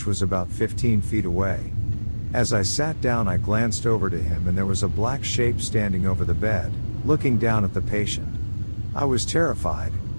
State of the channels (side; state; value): both; inverted; correlation -1.00